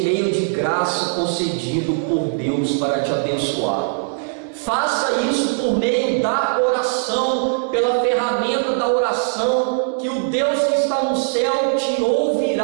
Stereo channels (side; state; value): left; silent; 66 dB below the other